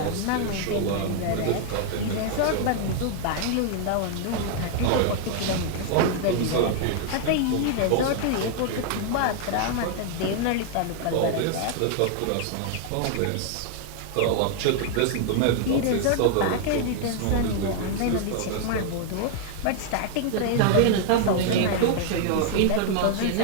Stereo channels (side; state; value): both; different; correlation 0.00